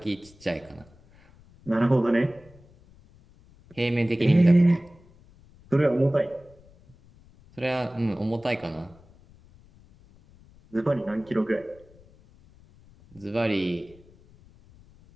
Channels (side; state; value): left; noise; rumble, 26 dB below the sound